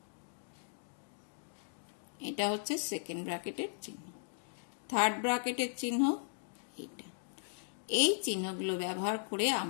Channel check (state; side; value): silent; right; digital silence